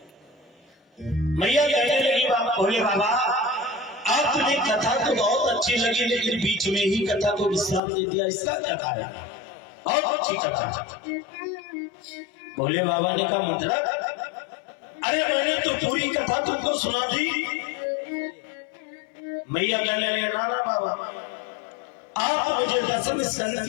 मैया कहने लगी भोले बाबा आपने कथा तो बहुत अच्छी लगी, लेकिन बीच में ही कथा को विश्राम दे दिया, इसका क्या कारण? बहुत अच्छी कथा। भोले बाबा ने कहा मतलब? अरे मैंने तो पूरी कथा तुमको सुना दी, मैया कहने लगे नाना बाबा आप मुझे दशम स्कंद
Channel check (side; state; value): right; drops out; at 7.8 s